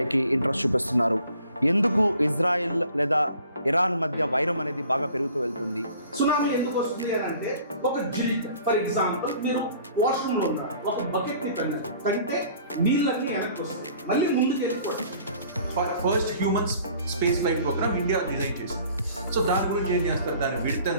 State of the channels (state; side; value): inverted; both; correlation -0.52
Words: interest చూపిస్తున్నారు? ఎందుకు ఇజ్రాయిల్ లేదా ఇరాన్ మధ్య వైరం అనేది బాగా పెరుగుతూ వెళ్తుంది? సునామీ ఎందుకు వస్తుంది అని అంటే, ఒక జిలిక్ ఫర్ ఎగ్జాంపుల్ మీరు వాష్రూమ్ లో ఉన్నారు, ఒక బకెట్ ని తంటే నీళ్ళన్నీ వెనక్కి వస్తాయి, మళ్ళీ ముందుకు వెళ్ళిపోతాయి. First human space flight program India design చేసింది. సో దాని గురించి ఏం చేస్తారు, దాని విడ్త్